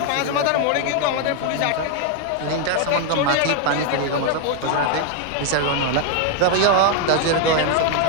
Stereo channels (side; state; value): both; different; correlation 0.00